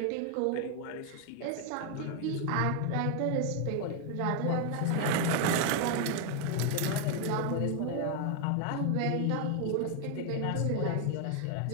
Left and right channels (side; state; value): both; different; correlation 0.00